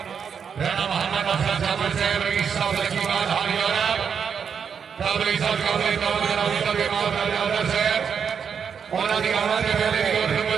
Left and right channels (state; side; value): quieter; left; 6.9 dB